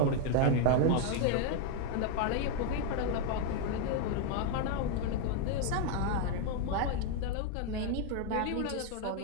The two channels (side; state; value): both; different; correlation 0.01